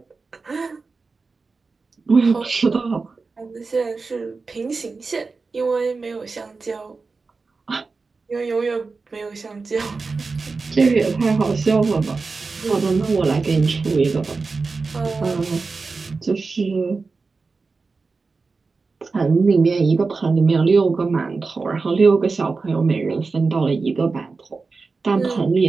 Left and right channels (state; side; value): quieter; left; 4.2 dB